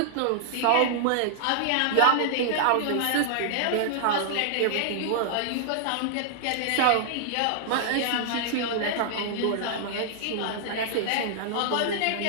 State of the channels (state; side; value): different; both; correlation -0.01